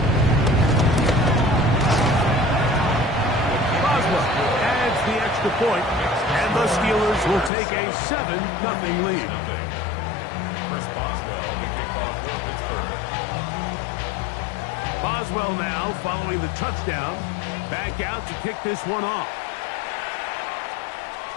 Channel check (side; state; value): right; drops out; at 7.5 s